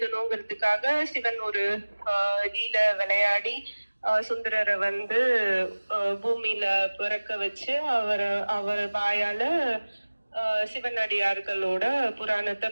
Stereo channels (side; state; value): both; inverted; correlation -1.00